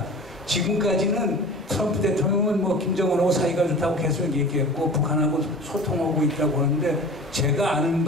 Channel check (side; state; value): both; normal; correlation 0.39